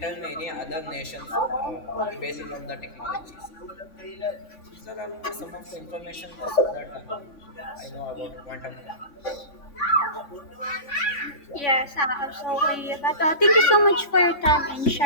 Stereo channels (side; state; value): right; late; 3.5 ms